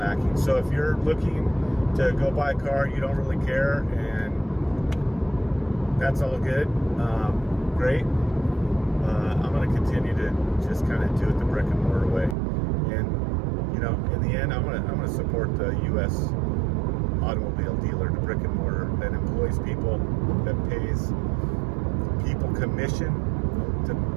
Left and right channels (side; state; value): left; drops out; at 12.4 s